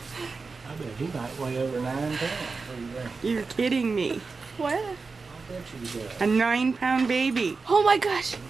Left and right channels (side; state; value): left; quieter; 4.4 dB